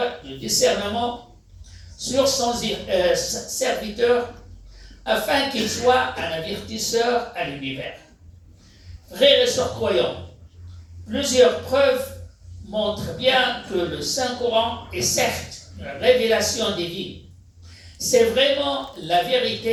du discernement sur son serviteur afin qu'il soit un avertisseur à l'univers. Frères et sœurs croyants, plusieurs preuves montrent bien que le Saint-Coran est certes une révélation divine. C'est vraiment la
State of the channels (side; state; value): both; identical; correlation 1.00